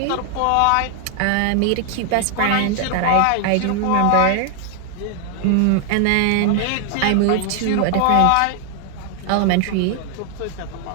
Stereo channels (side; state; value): both; different; correlation 0.00